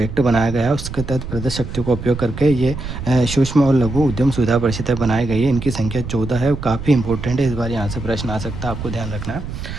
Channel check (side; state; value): right; noise; rumble, 8 dB below the sound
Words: बनाया गया है उसके तहत प्रदत्त शक्तियों का उपयोग करके ये सूक्ष्म और लघु उद्यम सुविधा परिषदें बनाई गई है। इनकी संख्या 14 है, काफ़ी इंपॉर्टेंट है, इस बार यहाँ से प्रश्न आ सकता है, आपको ध्यान रखना